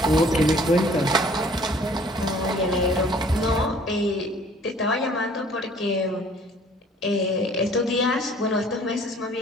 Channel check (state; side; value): normal; both; correlation 0.55